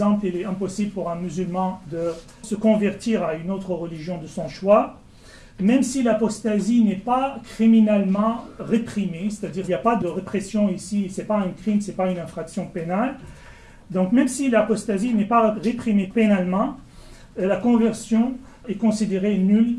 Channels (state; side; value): identical; both; correlation 1.00